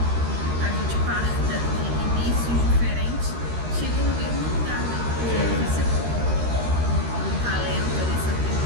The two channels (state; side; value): late; left; 13 ms